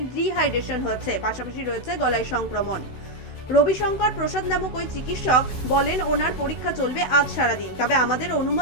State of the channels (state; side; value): late; right; 16 ms